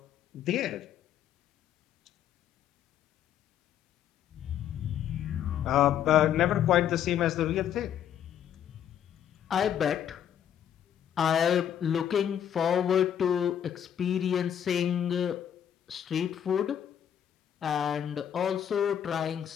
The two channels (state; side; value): quieter; right; 9.6 dB